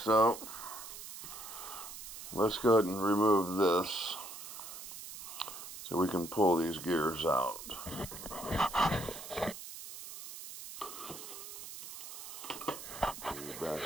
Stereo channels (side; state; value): right; noise; hiss, 11 dB below the sound